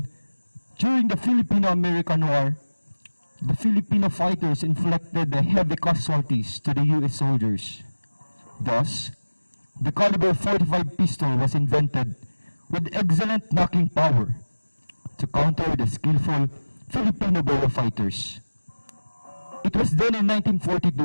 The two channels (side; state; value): both; inverted; correlation -1.00